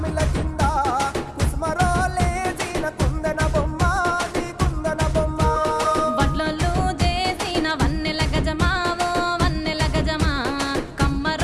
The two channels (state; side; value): identical; both; correlation 1.00